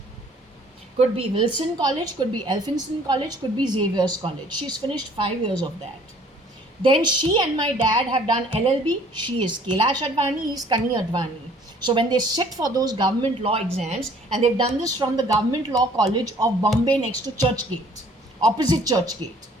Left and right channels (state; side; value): normal; both; correlation 0.56